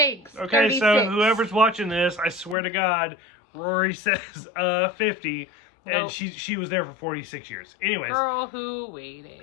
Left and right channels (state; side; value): drops out; right; at 2.6 s